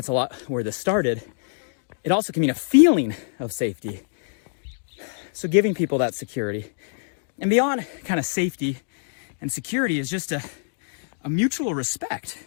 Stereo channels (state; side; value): silent; right; digital silence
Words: a lot where this started. It also can mean a feeling of safety. So giving people that security. And beyond kind of safety and security is just a mutual respect.